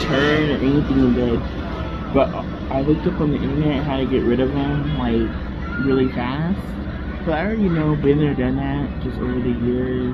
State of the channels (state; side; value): identical; both; correlation 1.00